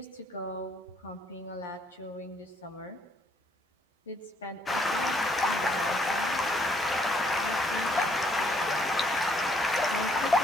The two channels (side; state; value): both; normal; correlation 0.68